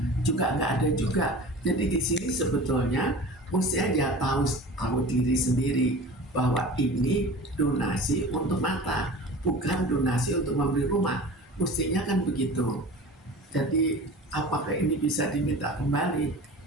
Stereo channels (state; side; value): normal; both; correlation 0.38